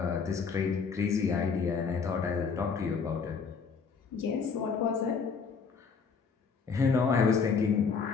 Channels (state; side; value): quieter; right; 5.5 dB